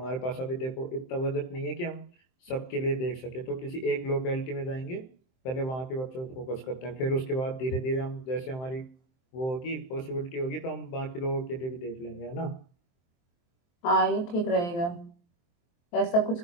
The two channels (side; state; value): right; late; 23 ms